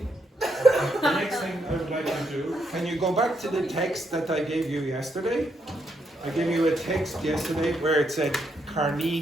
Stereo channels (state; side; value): normal; both; correlation 0.78